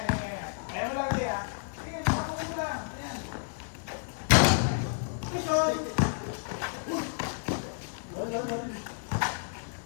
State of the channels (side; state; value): right; silent; 57 dB below the other